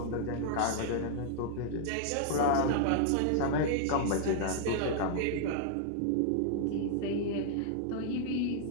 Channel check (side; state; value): both; different; correlation -0.01